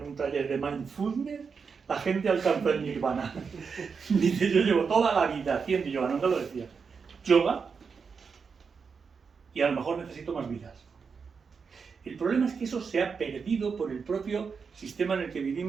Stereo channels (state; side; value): quieter; left; 5.6 dB